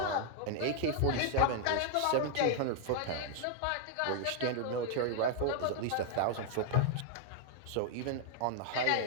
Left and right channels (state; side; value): different; both; correlation -0.01